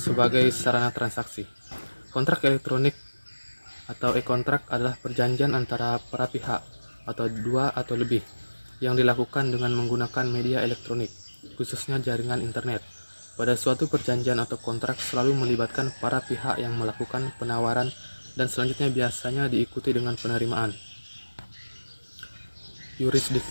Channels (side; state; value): both; inverted; correlation -1.00